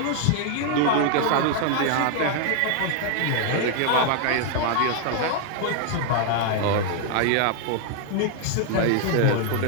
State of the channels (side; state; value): both; different; correlation 0.00